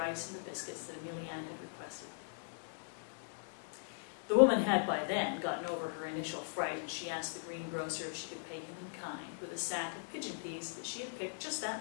and the biscuits that Ameliana had requested. The woman had by then gotten over her initial fright, and she asked the greengrocer if she could pay him in kind with a sack of pigeon peas that she had picked just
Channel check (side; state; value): right; silent; digital silence